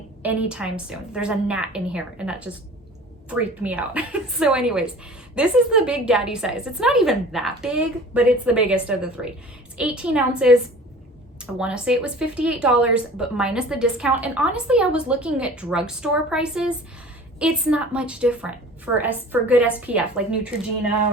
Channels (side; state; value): both; normal; correlation 0.43